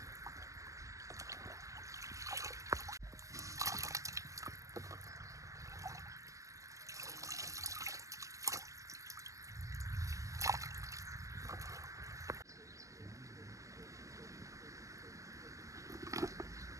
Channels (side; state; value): left; late; 0.15 ms